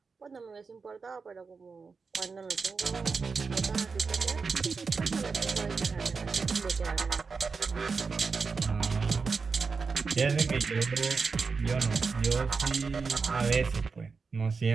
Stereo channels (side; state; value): left; quieter; 4.9 dB